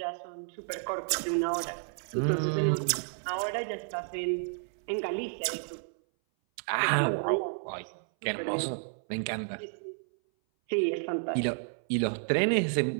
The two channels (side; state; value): left; silent; 57 dB below the other